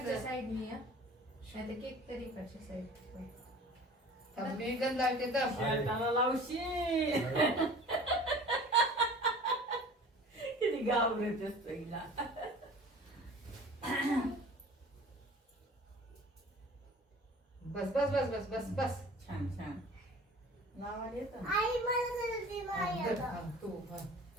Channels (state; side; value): normal; both; correlation 0.44